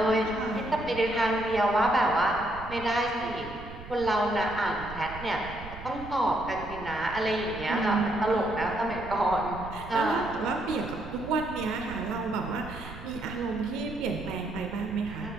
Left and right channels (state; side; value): noise; right; rumble, 13 dB below the sound